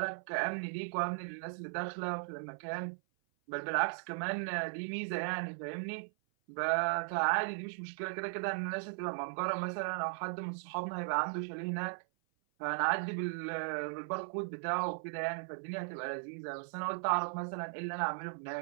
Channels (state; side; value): silent; left; 53 dB below the other